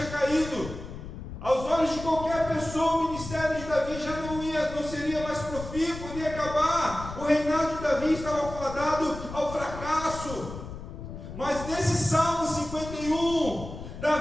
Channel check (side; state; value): left; noise; rumble, 10 dB below the sound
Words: caído. Aos olhos de qualquer pessoa, o ministério de Davi já não seria mais profícuo, iria acabar. O reinado de Davi estava fadado ao fracasso. Mas nesse Salmo 51,